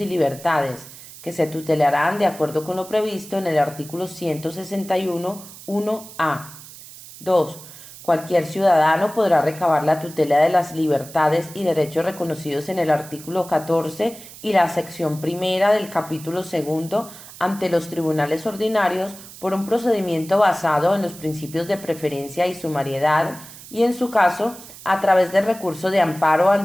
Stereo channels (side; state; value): right; noise; hiss, 17 dB below the sound